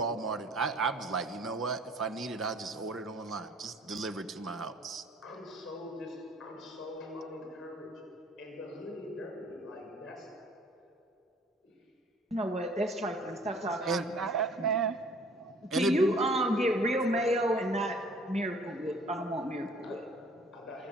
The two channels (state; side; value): normal; both; correlation 0.55